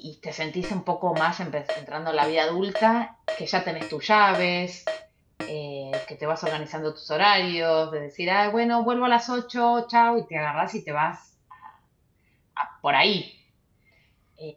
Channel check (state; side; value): identical; both; correlation 1.00